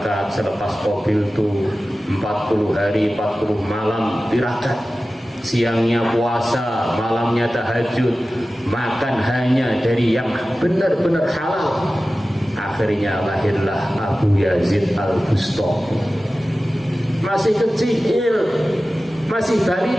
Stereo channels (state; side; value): normal; both; correlation 0.95